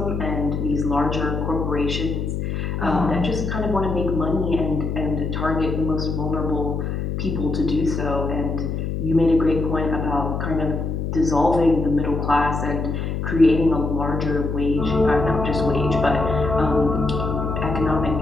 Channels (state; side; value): noise; left; hum, 2 dB below the sound